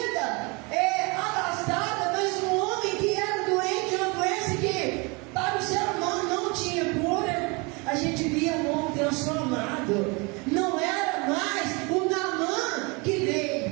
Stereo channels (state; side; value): quieter; left; 28.7 dB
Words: abastada, mas um homem que era doente, uma doença que para o ser humano não tinha cura. A gente via um homem transformado. Não era mais o Naamã que